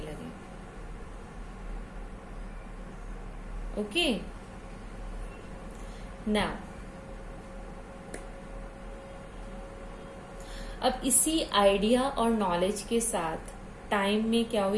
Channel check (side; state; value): both; identical; correlation 1.00